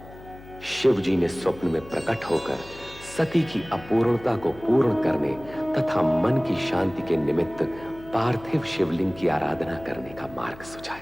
शिव जी ने स्वप्न में प्रकट होकर सती की अपूर्णता को पूर्ण करने तथा मन की शांति के निमित्त पार्थिव शिवलिंग की आराधना करने का मार्ग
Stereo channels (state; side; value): noise; left; hum, 18 dB below the sound